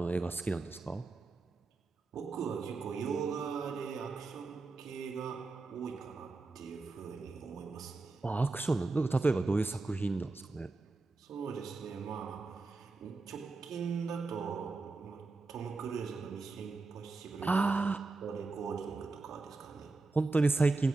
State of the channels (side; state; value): left; quieter; 3.6 dB